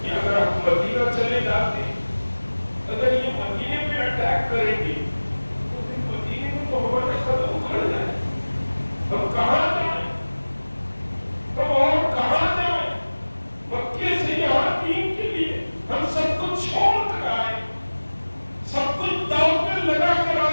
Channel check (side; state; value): both; inverted; correlation -1.00